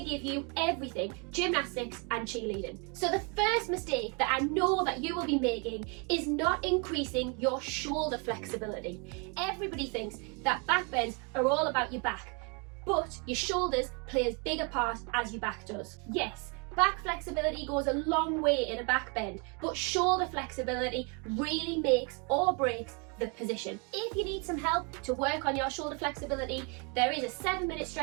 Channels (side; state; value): left; quieter; 34.1 dB